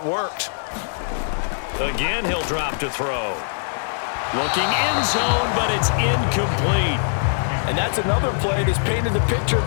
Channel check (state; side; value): silent; right; digital silence